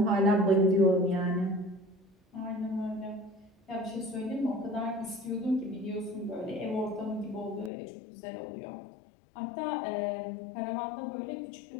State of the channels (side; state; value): right; drops out; at 7.7 s